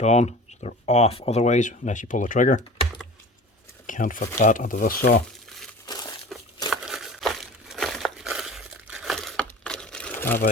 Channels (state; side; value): normal; both; correlation 0.39